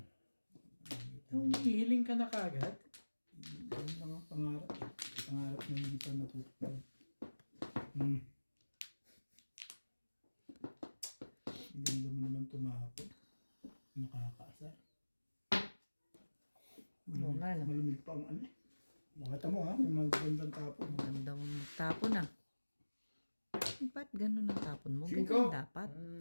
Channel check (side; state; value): both; inverted; correlation -1.00